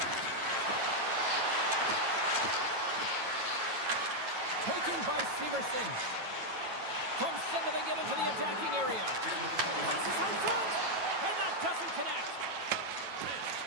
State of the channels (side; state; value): left; late; 9.2 ms